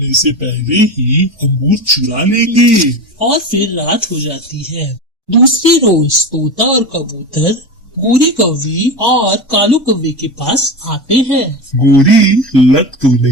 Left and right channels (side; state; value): both; normal; correlation 0.23